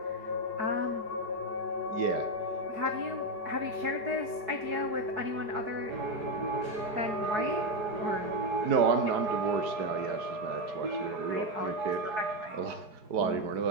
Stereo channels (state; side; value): late; left; 4.7 ms